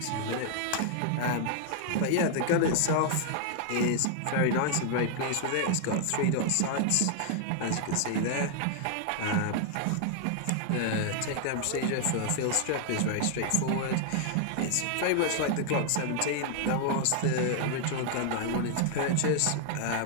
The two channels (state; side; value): different; both; correlation 0.00